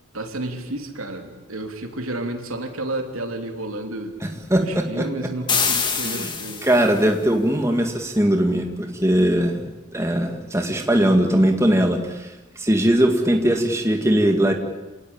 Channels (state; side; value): normal; both; correlation 0.76